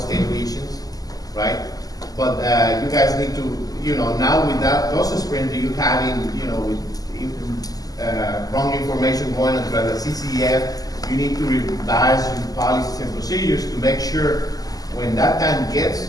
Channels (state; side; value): late; right; 0.18 ms